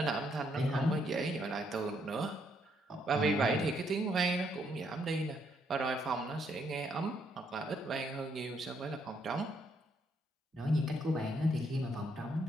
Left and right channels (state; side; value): normal; both; correlation 0.73